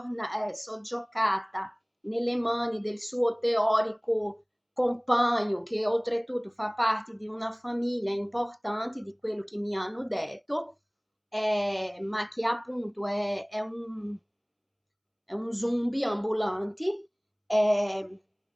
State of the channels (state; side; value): identical; both; correlation 1.00